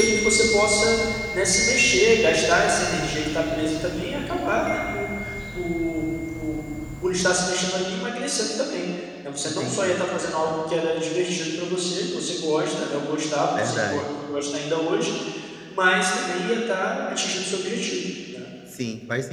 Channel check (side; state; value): both; identical; correlation 1.00